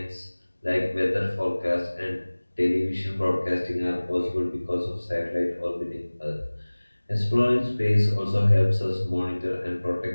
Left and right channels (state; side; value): inverted; both; correlation -1.00